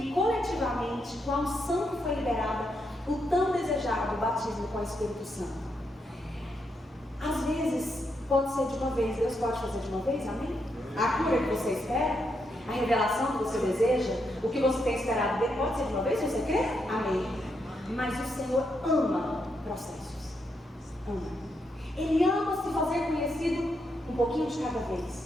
coletivamente, com a unção que foi liberada, o tão desejado batismo com o Espírito Santo. Às vezes pode ser de uma vez, Deus pode fazer de uma vez, amém? A cura que você espera, a revelação que você deseja, o que você tem esperado dele, pode ser de uma vez, se você crê? Amém. Mas o Senhor ama processos, ama. Ele ama se fazer conhecido um pouquinho de cada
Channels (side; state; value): both; normal; correlation 0.80